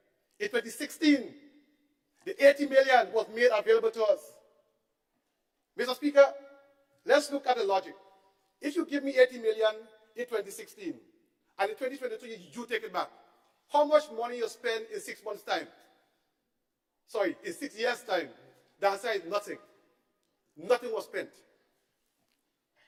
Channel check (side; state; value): both; identical; correlation 1.00